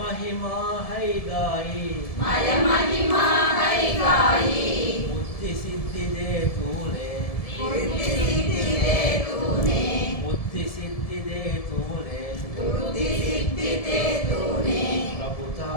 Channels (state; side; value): late; right; 1.7 ms